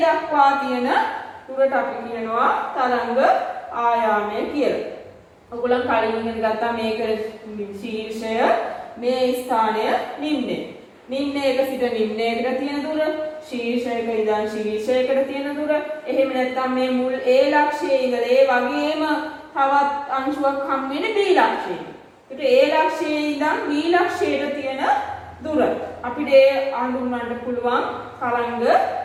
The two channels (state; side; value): identical; both; correlation 1.00